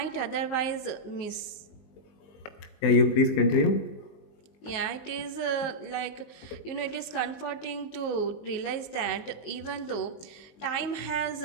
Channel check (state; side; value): late; right; 19 ms